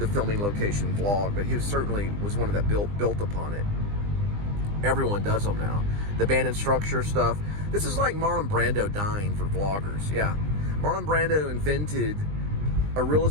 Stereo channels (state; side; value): late; left; 20 ms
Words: filming location vlog, but he certainly was one of that built upon it. Everyone does them now. The band instructor stuff. This is like Marlon Brando dying for vloggers. Yeah. Marlon Brando invented a